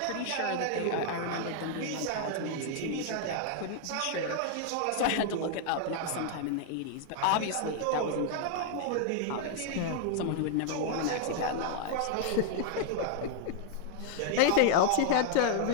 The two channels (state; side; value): different; both; correlation 0.00